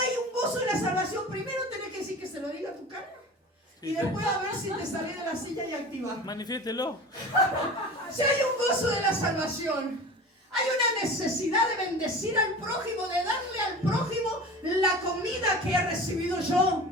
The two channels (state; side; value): normal; both; correlation 0.36